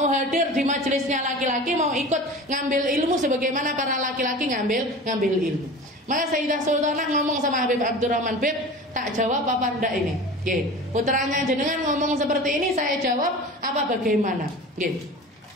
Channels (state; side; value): normal; both; correlation 0.36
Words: hadir di majelisnya laki-laki, mau ikut ngambil ilmu sebagaimana para laki-laki ngambil ilmu. Maka Sayyidah Sultanah ngomong sama Habib Abdurrahman, Beb, tak jawab apa enggak ini? Putranya jenengan ngomong seperti ini, saya jawab apa bagaimana?